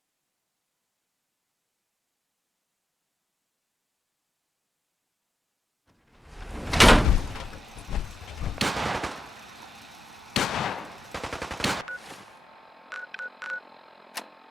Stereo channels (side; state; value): both; normal; correlation 0.89